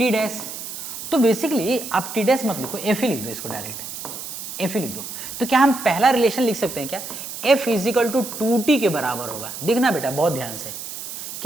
डैश। तो बेसिकली आप टी डैश मत लिखो, एफ ही लिख दो, इसको डायरेक्ट एफ ही लिख दो। तो क्या हम पहला रिलेशन लिख सकते हैं क्या, एफ इजिकल टू 2t के बराबर होगा। देखना बेटा बहुत ध्यान से,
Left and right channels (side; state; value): right; noise; hiss, 9 dB below the sound